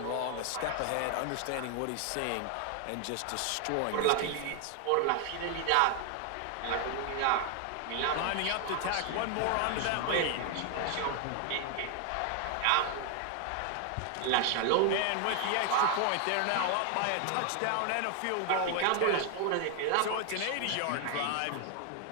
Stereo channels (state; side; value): different; both; correlation 0.00